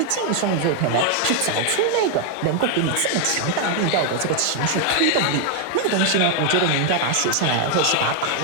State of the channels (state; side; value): different; both; correlation 0.01